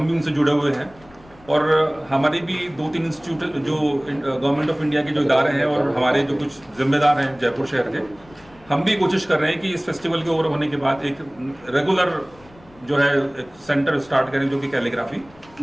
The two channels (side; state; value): left; noise; rumble, 26 dB below the sound